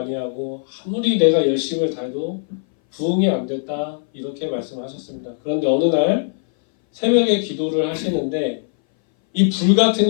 하고 아무리 내가 열심을 다해도 부흥이 안 됐다 이렇게 말씀하셨습니다. 그런데 어느 날 새벽에 기도를 하시는데 이 불 같은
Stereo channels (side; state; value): right; silent; 61 dB below the other